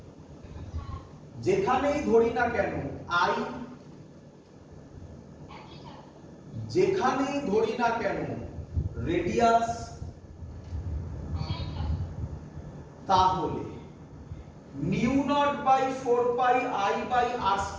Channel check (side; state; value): both; identical; correlation 1.00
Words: যেখানেই ধরি না কেন আই, যেখানেই ধরি না কেন রেডিয়াস, তাহলে mu not by 4 pi I by R